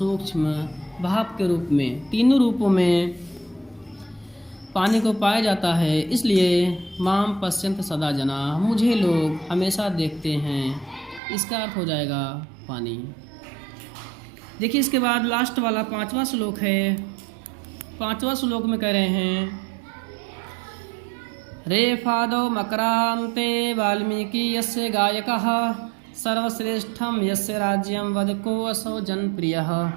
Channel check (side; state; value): left; drops out; at 11.2 s